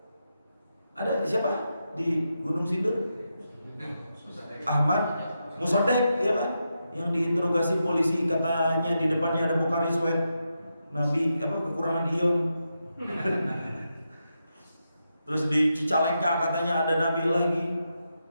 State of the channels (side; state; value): both; inverted; correlation -0.86